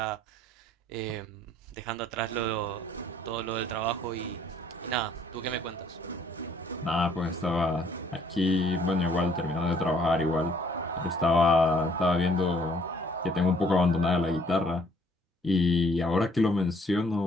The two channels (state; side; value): normal; both; correlation 0.62